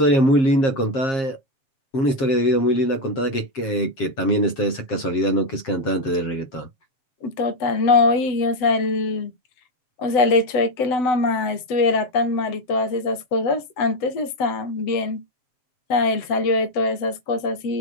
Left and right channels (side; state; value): right; late; 7.9 ms